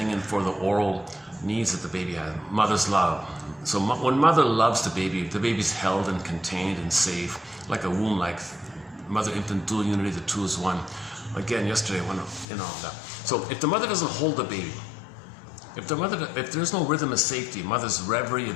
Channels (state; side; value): drops out; right; at 12.5 s